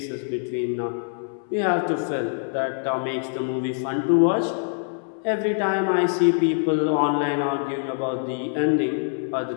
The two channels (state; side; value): silent; right; 62 dB below the other